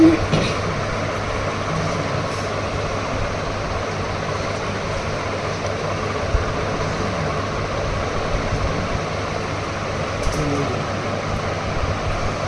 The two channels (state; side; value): identical; both; correlation 1.00